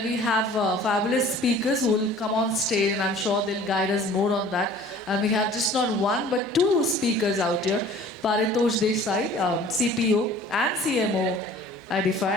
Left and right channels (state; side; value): normal; both; correlation 0.48